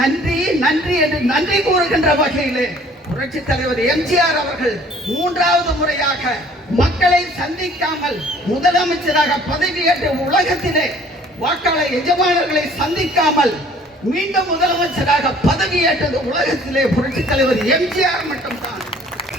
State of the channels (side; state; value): both; normal; correlation 0.54